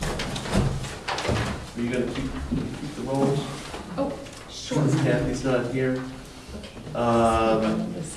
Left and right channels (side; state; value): both; identical; correlation 1.00